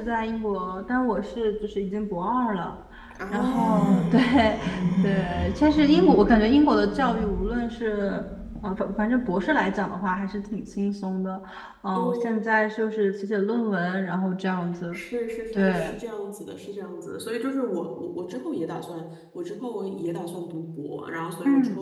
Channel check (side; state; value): both; identical; correlation 1.00